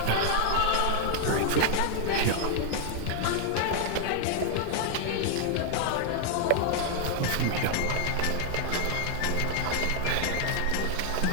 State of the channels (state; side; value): different; both; correlation 0.00